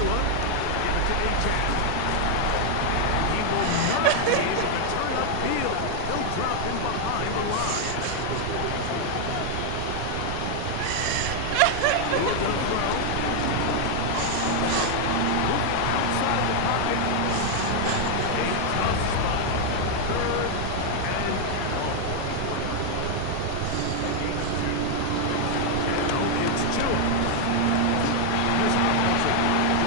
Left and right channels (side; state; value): both; different; correlation 0.00